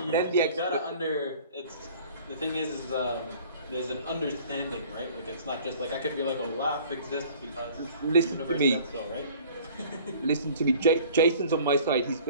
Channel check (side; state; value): both; inverted; correlation -0.49